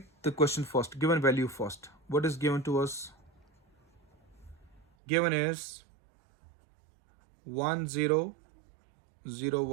the question first, given value first. What is given to us? Given is 1 0 0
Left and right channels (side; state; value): left; drops out; at 4.9 s